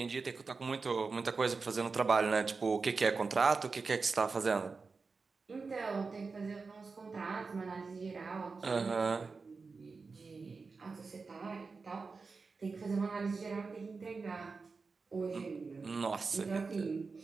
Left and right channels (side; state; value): left; quieter; 4.5 dB